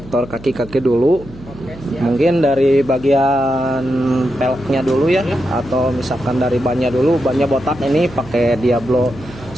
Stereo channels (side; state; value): right; noise; hum, 18 dB below the sound